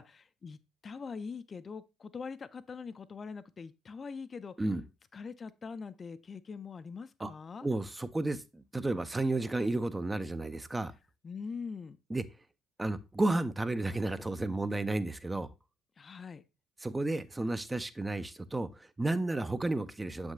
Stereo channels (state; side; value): normal; both; correlation 0.94